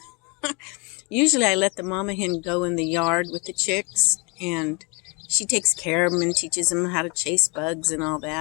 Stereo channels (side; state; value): right; quieter; 30.6 dB